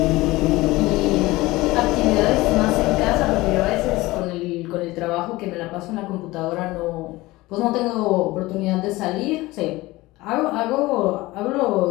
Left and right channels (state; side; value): quieter; right; 19.8 dB